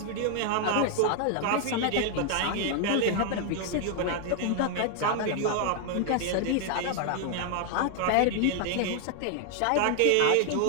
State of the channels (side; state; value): both; different; correlation 0.00